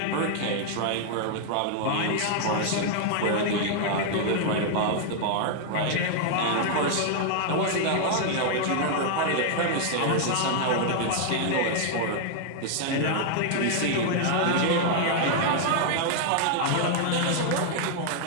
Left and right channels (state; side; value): different; both; correlation 0.00